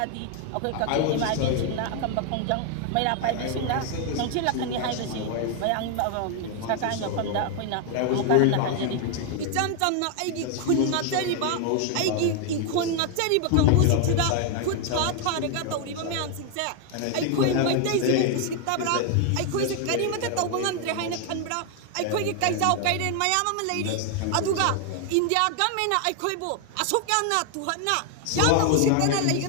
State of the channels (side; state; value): both; different; correlation 0.00